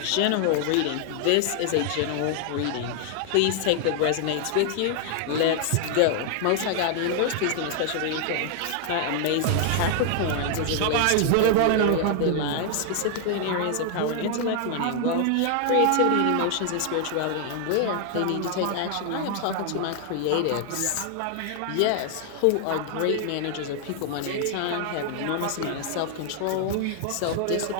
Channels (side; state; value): both; different; correlation 0.00